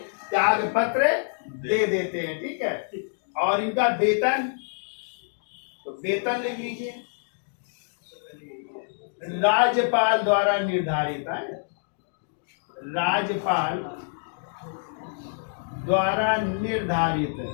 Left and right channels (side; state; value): right; silent; digital silence